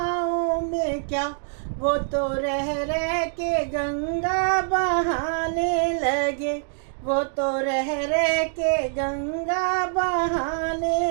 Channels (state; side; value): silent; left; digital silence